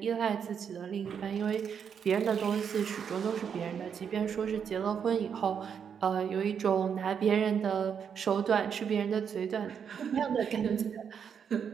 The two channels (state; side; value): quieter; left; 7.4 dB